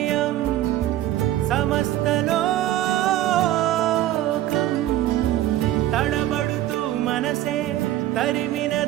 సమస్తలోకం తడబడుతూ మనసే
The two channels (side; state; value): left; quieter; 13.7 dB